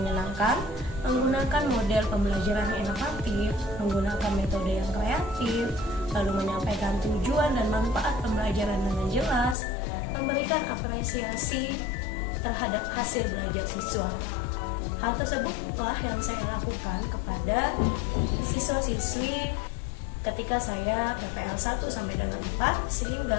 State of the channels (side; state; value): right; drops out; at 9.6 s